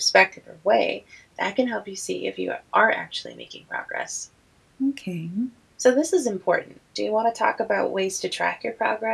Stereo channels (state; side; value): identical; both; correlation 1.00